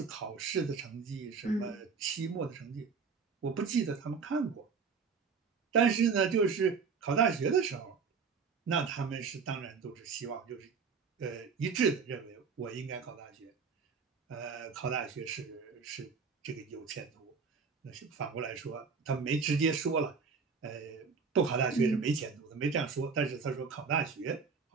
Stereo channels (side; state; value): left; quieter; 5.5 dB